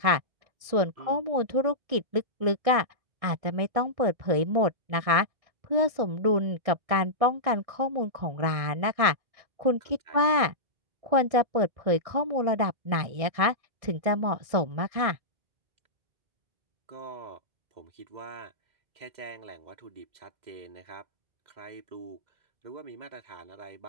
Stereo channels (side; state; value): left; late; 1.6 ms